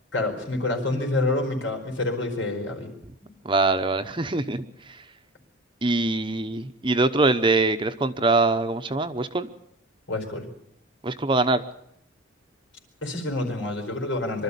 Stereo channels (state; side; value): normal; both; correlation 0.32